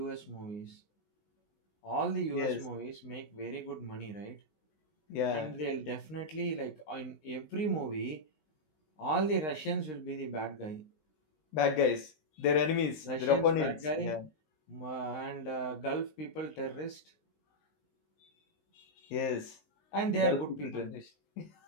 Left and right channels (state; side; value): late; right; 19 ms